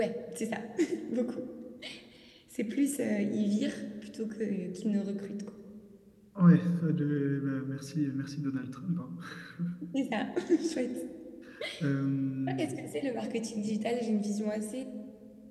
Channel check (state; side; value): identical; both; correlation 1.00